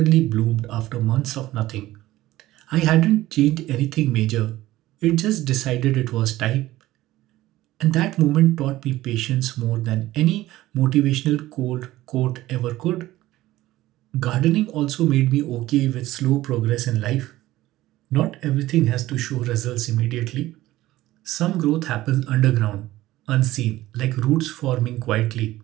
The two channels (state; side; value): quieter; left; 16.2 dB